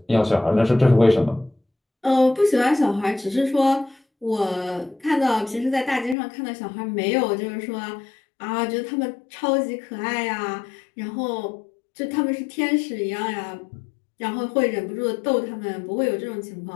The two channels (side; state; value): right; drops out; at 6.2 s